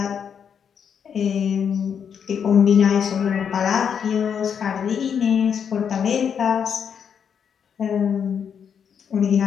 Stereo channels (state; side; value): quieter; right; 7.5 dB